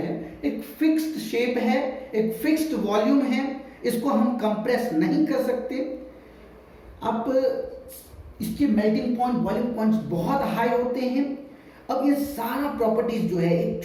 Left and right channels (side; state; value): both; identical; correlation 1.00